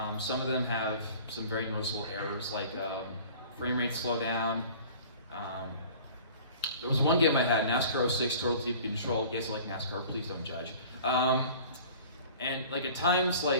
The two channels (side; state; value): both; inverted; correlation -0.45